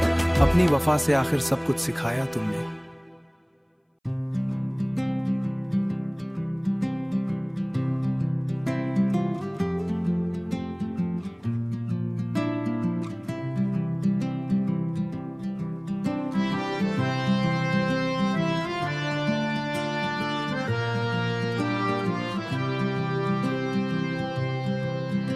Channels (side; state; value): both; identical; correlation 1.00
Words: अपनी वफा से आखिर सब कुछ सिखाया तुमने।